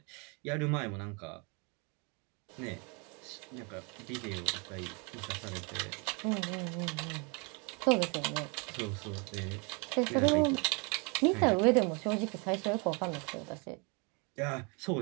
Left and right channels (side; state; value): left; quieter; 32.5 dB